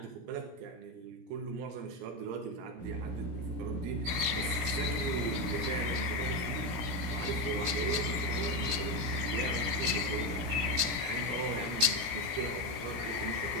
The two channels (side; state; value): left; late; 17 ms